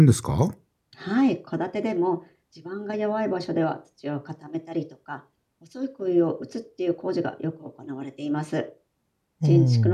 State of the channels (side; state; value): both; identical; correlation 1.00